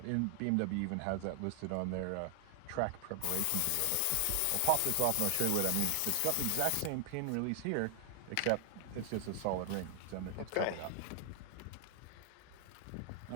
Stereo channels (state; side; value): different; both; correlation 0.00